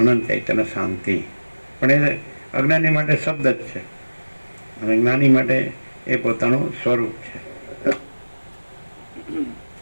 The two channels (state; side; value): inverted; both; correlation -1.00